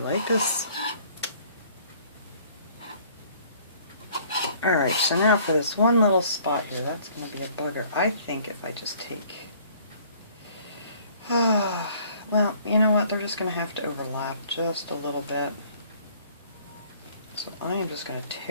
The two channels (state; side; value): inverted; both; correlation -0.57